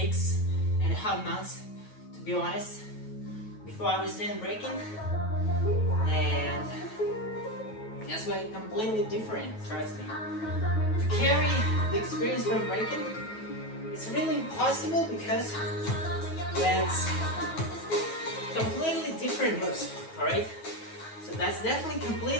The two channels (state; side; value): late; right; 9.3 ms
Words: months, to be honest. Before I was doing breaking, and that's why it's completely different, trust me. To carry the experience from breaking, it's really impossible because that's completely different moves, alright? So that's definitely